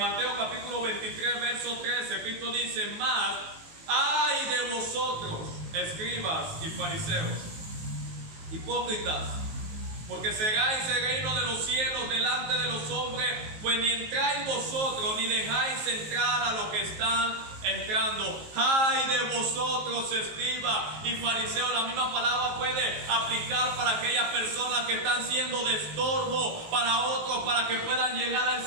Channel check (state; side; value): late; left; 19 ms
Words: capítulo 23, verso 13, Cristo dice: más, ay de vosotros, escribas y fariseos, hipócritas, porque cegáis el reino de los cielos delante de los hombres, pues ni entráis vosotros, ni dejáis entrar a los que están entrando. ¡Ay de vosotros, escribas y fariseos! La misma palabra puede aplicar para aquellas personas que están siendo de estorbo para otros, para que puedan llegar